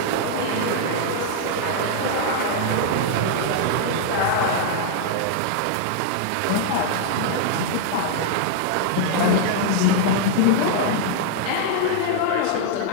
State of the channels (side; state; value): both; different; correlation 0.00